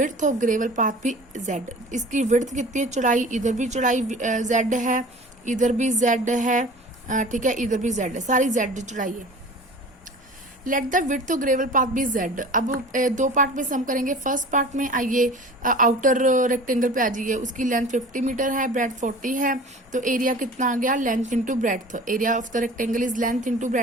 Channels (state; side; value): normal; both; correlation 0.41